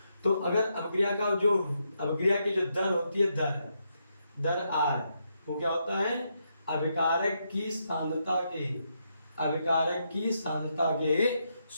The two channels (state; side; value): inverted; both; correlation -0.80